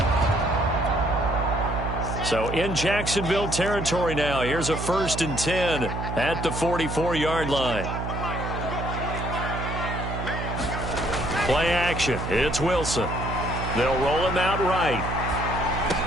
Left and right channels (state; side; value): noise; right; hum, 5 dB below the sound